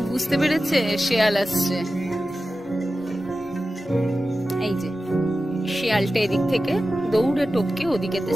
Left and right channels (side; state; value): both; normal; correlation 0.94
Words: বুঝতে পেরেছে শেয়াল আসছে। এই যে শেয়ালটা এদিক থেকে দৌড়ে টপকে ওদিকেতে